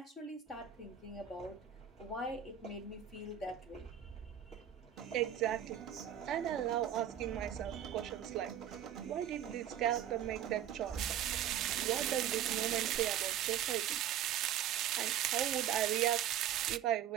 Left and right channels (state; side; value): quieter; left; 10.4 dB